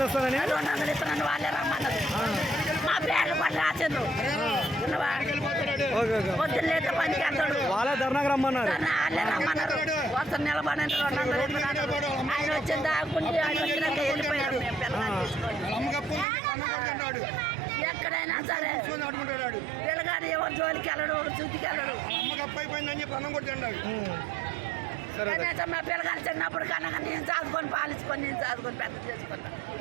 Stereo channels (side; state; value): left; drops out; at 16.2 s